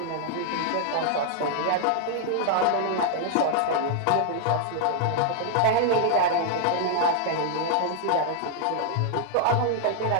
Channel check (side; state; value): both; different; correlation 0.00